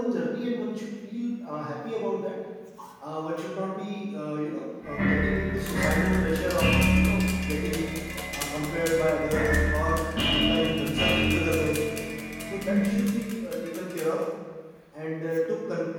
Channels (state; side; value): identical; both; correlation 1.00